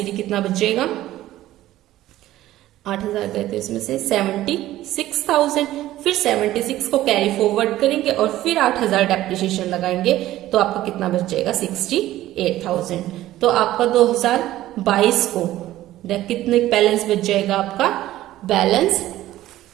कितना बच जाएगा, 8,000 गए थे इसमें से 76,000, फिर 76 को कैरी फॉरवर्ड करेंगे और फिर 8,000 डेप्रिसिएशन लगाएंगे तो आपका कितना बच जाएगा, 68,000। तो आपका 2022 को कितने बैलेंस बच जाएगा, आपका बैलेंस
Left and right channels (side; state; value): left; quieter; 14.8 dB